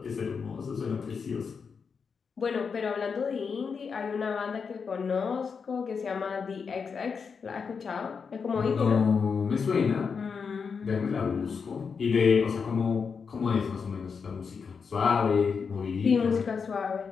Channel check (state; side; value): quieter; right; 5.8 dB